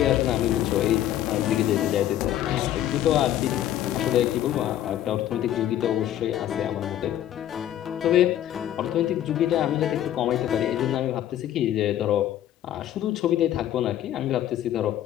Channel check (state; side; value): quieter; right; 12.0 dB